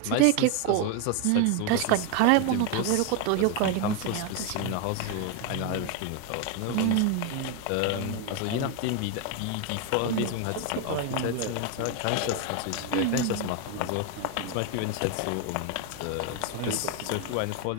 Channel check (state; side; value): different; both; correlation 0.01